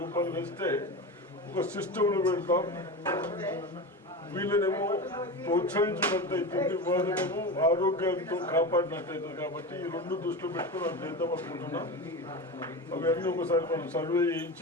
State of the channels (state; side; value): normal; both; correlation 0.25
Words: రూపాయలు వేస్తే ఒక సిస్టంలో పెడతాం. వీళ్ళనేమో ప్రోత్సహించినట్టు అవుతుంది, వాళ్ళనేమో ఆరోగ్యంతో కాపాడినట్టు అవుతుంది. కాబట్టి ఈ రెండు దృష్టిలో పెట్టుకుని అది చేద్దాం అనుకుంటున్నాం. అవన్నీ ఒకసారి మనం సర్వే చేయించి